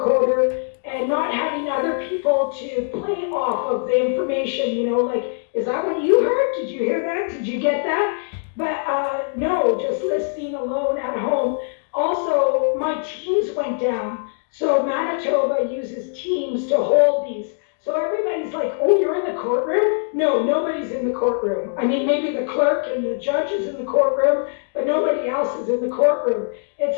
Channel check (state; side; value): silent; right; digital silence